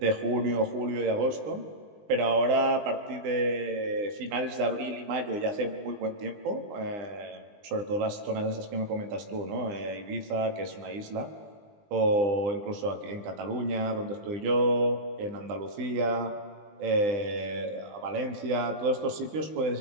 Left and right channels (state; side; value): late; left; 20 ms